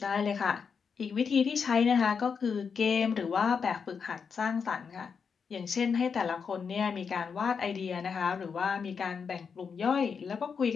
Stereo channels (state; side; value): quieter; right; 6.0 dB